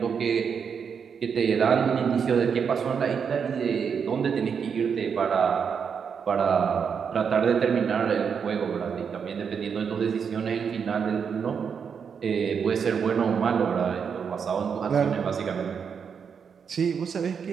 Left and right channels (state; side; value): quieter; left; 6.7 dB